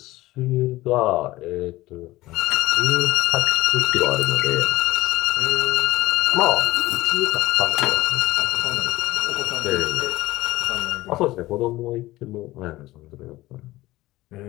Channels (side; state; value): right; quieter; 17.8 dB